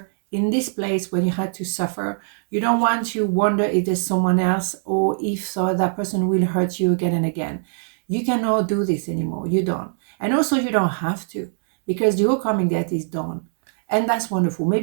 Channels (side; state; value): left; silent; digital silence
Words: in this place when you had to suffer. You don't want to wonder if there's someone else, or if so that person will hurt you again and again. You cannot do this anymore. You don't. And also you don't have to, because your karmic debt is done. And that's wonderful.